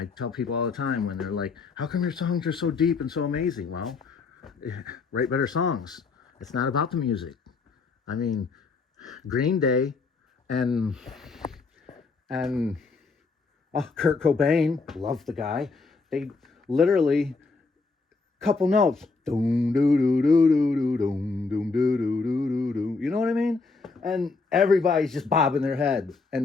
tell people all the time when they're like, how come your songs are so deep and so amazing? Well, write better songs. It's not about the music. I mean, Green Day and Kurt Cobain, love the guy. They literally couple notes, doom doo doo doo doo doo doom doom doo doo doo doo doo. You know what I mean? And everybody's just bobbing their head.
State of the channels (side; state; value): right; quieter; 4.2 dB